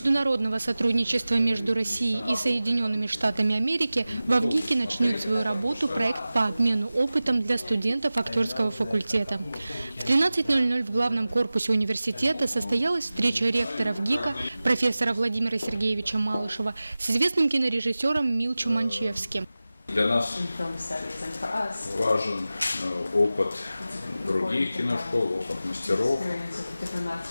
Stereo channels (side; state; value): both; inverted; correlation -0.96